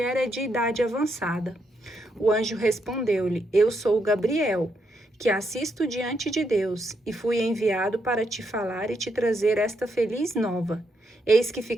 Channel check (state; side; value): normal; both; correlation 0.79